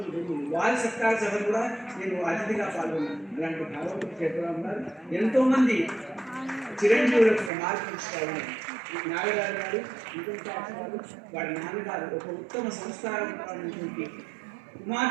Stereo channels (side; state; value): left; drops out; at 7.5 s